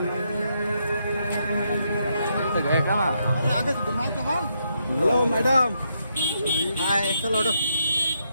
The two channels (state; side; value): inverted; both; correlation -0.78